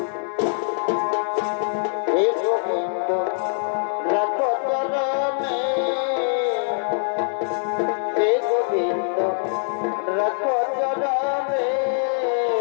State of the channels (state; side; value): silent; right; digital silence